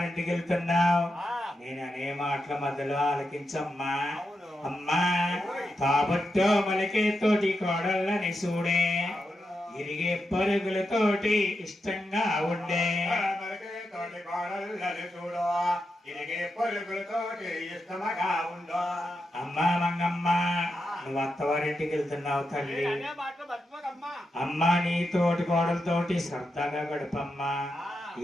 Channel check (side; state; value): both; normal; correlation 0.87